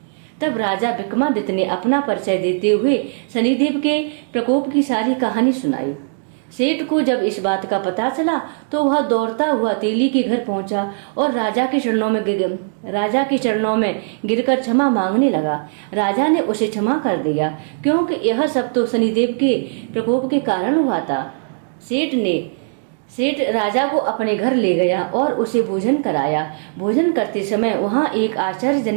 तब राजा विक्रमादित्य ने अपना परिचय देते हुए शनिदेव के प्रकोप की सारी कहानी सुनाई। सेठ को जब इस बात का पता चला तो वह दौड़ता हुआ तेली के घर पहुंचा और राजा के चरणों में गिरकर क्षमा मांगने लगा। राजा ने उसे क्षमा कर दिया, क्योंकि यह सब तो शनिदेव के प्रकोप के कारण हुआ था। सेठ राजा को अपने घर ले गया और उसे भोजन कराया। भोजन करते समय वहाँ एक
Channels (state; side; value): silent; left; digital silence